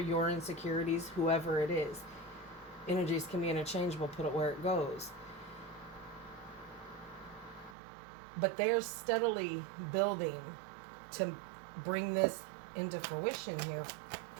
insecurities, whoever it is. Energies can be interchangeable, put it where it goes. But they're steadily building to bring this into fruition here,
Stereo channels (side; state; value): left; drops out; at 7.8 s